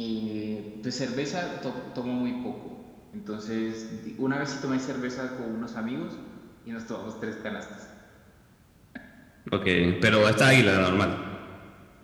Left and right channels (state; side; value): identical; both; correlation 1.00